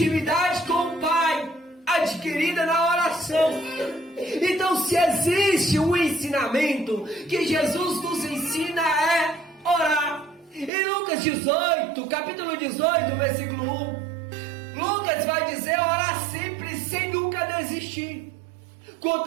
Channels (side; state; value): left; drops out; at 10.7 s